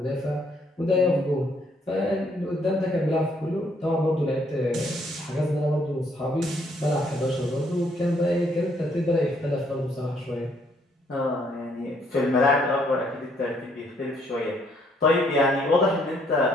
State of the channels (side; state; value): both; normal; correlation 0.68